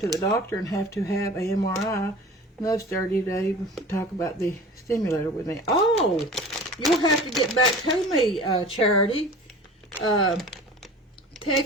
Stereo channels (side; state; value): both; normal; correlation 0.40